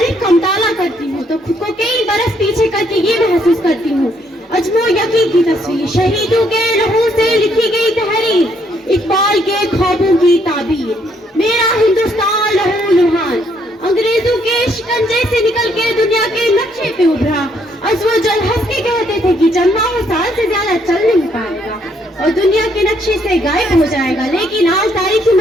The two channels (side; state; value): both; normal; correlation 0.70